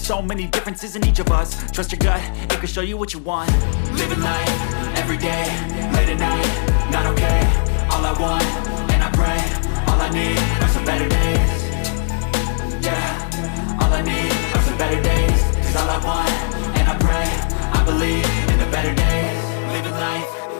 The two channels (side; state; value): right; silent; digital silence